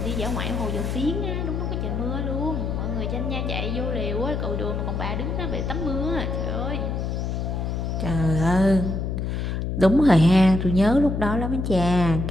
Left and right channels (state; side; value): noise; left; hum, 2 dB below the sound